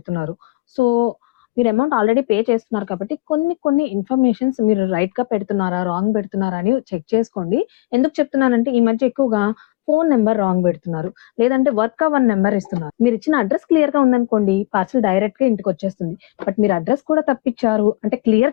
సో, మీరు అమౌంట్ ఆల్రెడీ పే చేస్తున్నారు కాబట్టి కొన్ని ఇన్ఫర్మేషన్స్ మీరు రైట్‌గా పెడుతున్నారా? రాంగ్ పెడుతున్నారా? అని చెక్ చేసుకోండి. ఎందుకు చెప్తున్నానంటే ఈ మధ్య ఎక్కువగా ఫోను నంబర్ రాంగ్ పెడుతున్నారు. లేదంటే వర్క్ అవ్వని నంబర్ ఇస్తున్నారు. మీరిచ్చిన అడ్రెస్ క్లియర్‌గా ఉందనుకోండి పార్సెల్ డైరెక్ట్‌గా ఇంటికొచ్చేస్తుంది. బట్ మీరు అడ్రెస్ కూడా తప్పిచ్చారు. అంటే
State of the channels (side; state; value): right; quieter; 21.7 dB